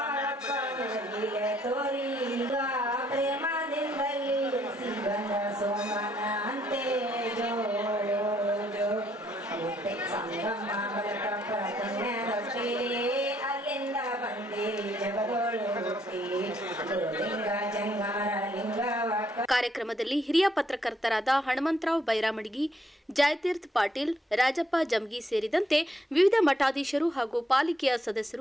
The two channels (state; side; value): normal; both; correlation 0.70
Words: ನಿನ್ನ ಲೀಲೆ ತೋರಿ, ಈಗ ಪ್ರೇಮದಿಂದಲಿ ಬಂದ ಸೋಮನ ಅಂತೆ ಜೋ ಜೋ. ಸಂಗಮ ಬಲಕ ಪುಣ್ಯದೊಟ್ಟಿ, ಅಲ್ಲಿಂದ ಬಂದಿರಿ ಜಗದೋಳು ಹುಟ್ಟಿ, ಗುರುಲಿಂಗ ಜಂಗಾರ ಲಿಂಗವ. ಕಾರ್ಯಕ್ರಮದಲ್ಲಿ ಹಿರಿಯ ಪತ್ರಕರ್ತರಾದ ಹನುಮಂತರಾವ್ ಬೈರಾಮಡಿಗಿ, ಜಯತೀರ್ಥ ಪಾಟೀಲ್, ರಾಜಪ್ಪ ಜಮಗಿ ಸೇರಿದಂತೆ ವಿವಿಧ ಮಠಾಧೀಶರು ಹಾಗೂ ಪಾಲಿಕೆಯ